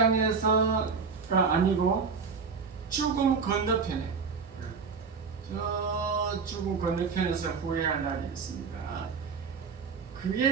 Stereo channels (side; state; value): left; quieter; 5.4 dB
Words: 아니고 죽음 건너편에 저 죽음 건너편에서 후회할 날이 있습니다.